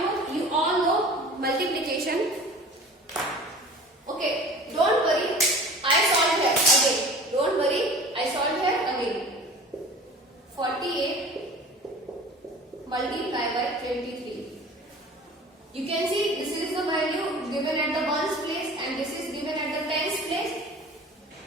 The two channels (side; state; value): both; normal; correlation 0.41